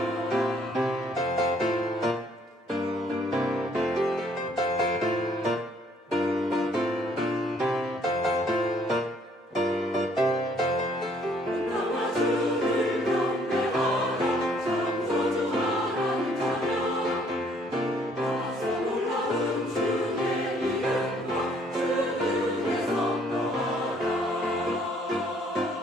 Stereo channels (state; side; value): normal; both; correlation 0.64